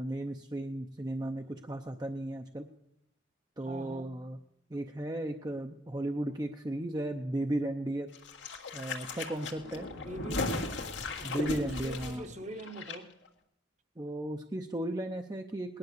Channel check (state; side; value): normal; both; correlation 0.71